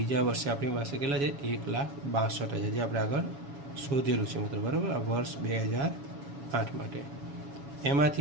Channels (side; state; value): left; late; 7.1 ms